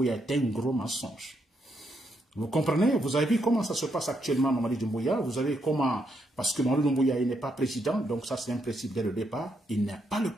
est un gros mensonge. Vous comprenez? Vous avez vu comment ça se passe actuellement, Mamadi Doumbouya. Vous avez comment... Parce que Mamadi Doumbouya, il n'est pas président, donc ça c'est un principe dès le départ. Il n'est pas le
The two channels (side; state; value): both; normal; correlation 0.78